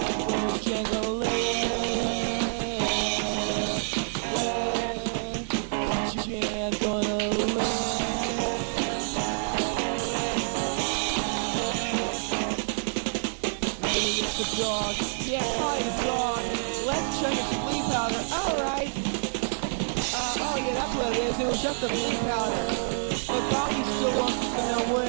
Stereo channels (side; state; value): left; silent; digital silence